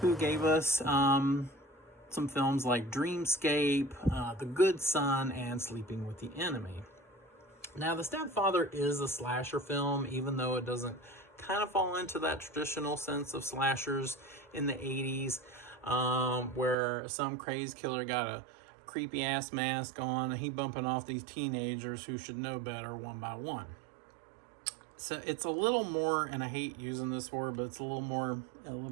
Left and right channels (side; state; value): left; drops out; at 16.8 s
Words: who gave us some films like Dreamscape, The Good Son, and Sleeping with the Enemy. Now, The Stepfather is a slasher film, even though it doesn't kind of fall into that traditional sense of slashers in the 80s, where some crazed killer got a creepy-ass mask on, and he bumping off these teenagers who should know better one by one. So it's a little more, and I hate using this word, but it's a little more